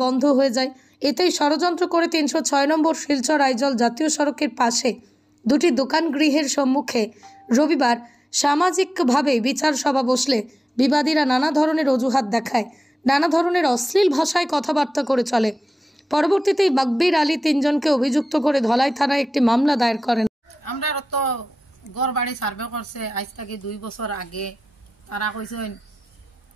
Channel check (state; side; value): normal; both; correlation 0.95